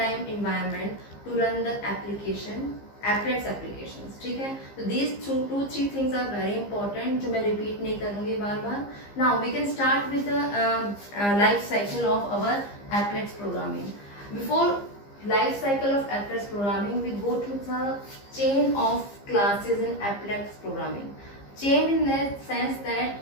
environment to run the applets applications. ठीक है, तो these 2-3 things are very important, जो मैं repeat नहीं करूँगी बार बार. Now we can start with the life cycle of our applets programming. Before life cycle of applets programming, we go to the chain of classes in applets programming. Chain in that sense that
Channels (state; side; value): late; right; 15 ms